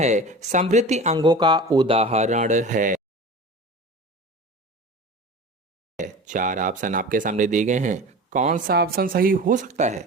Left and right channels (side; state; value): both; normal; correlation 0.35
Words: समृद्धि अंगों का उदाहरण है। चार ऑप्शन आपके सामने दिए गए हैं, कौन सा ऑप्शन सही हो सकता है?